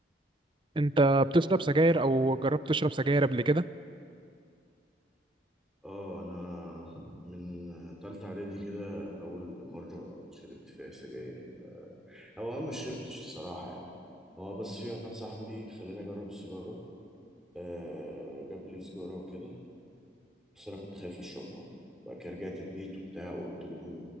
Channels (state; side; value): normal; both; correlation 0.64